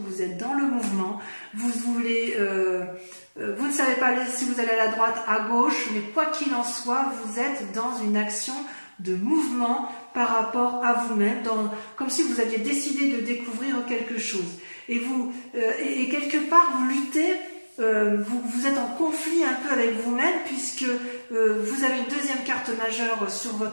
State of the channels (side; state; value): both; inverted; correlation -1.00